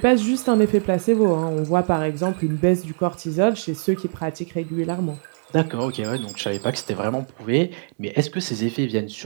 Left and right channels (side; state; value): left; silent; digital silence